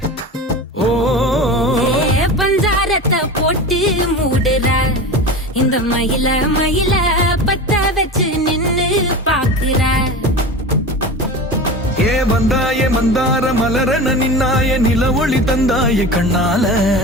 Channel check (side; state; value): both; normal; correlation 0.30